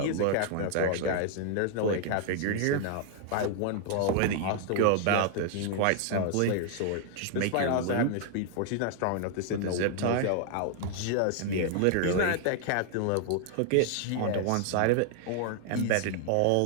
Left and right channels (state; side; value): different; both; correlation 0.00